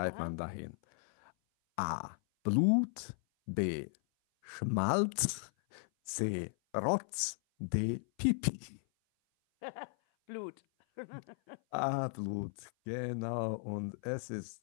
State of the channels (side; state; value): right; silent; 54 dB below the other